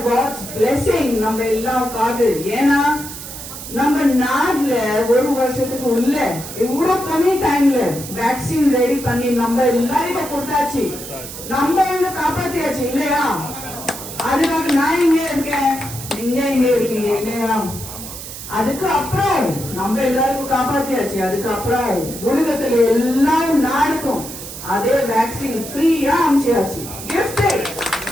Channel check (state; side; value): noise; right; hiss, 11 dB below the sound